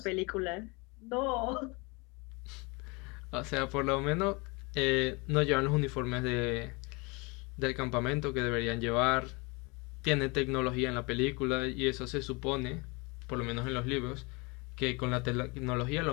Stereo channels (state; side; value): quieter; right; 28.1 dB